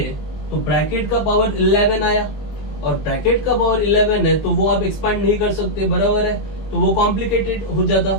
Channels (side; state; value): right; late; 20 ms